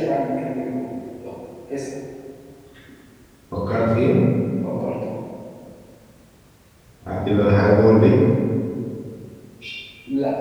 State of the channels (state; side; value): identical; both; correlation 1.00